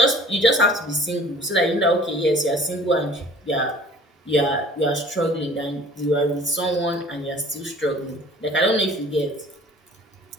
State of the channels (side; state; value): both; normal; correlation 0.50